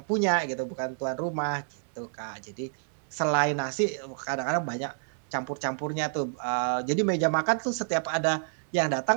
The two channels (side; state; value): left; silent; 59 dB below the other